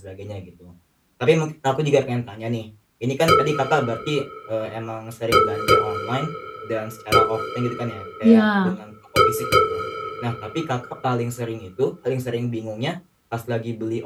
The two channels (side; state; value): both; identical; correlation 1.00